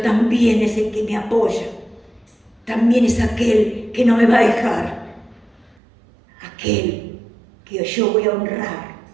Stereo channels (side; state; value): left; drops out; at 5.8 s